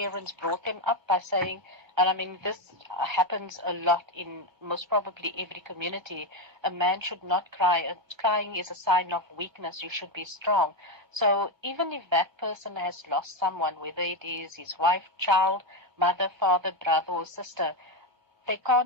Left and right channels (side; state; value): left; late; 1.3 ms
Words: brought them up by saying, and I mean this happens a lot in most probably every community, a man should not cry. Crying is a sign of weakness. You should be strong. So even if that person has lost someone, whether it is his wife, child, mother, father, brother or sister, they